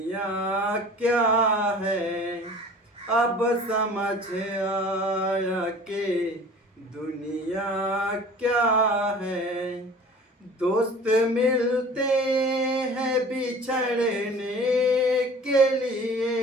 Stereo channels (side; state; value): both; normal; correlation 0.45